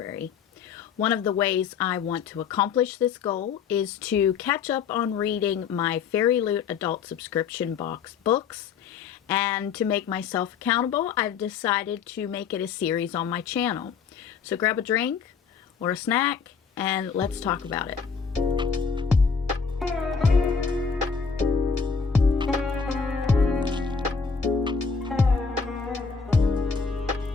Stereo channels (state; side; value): quieter; right; 5.9 dB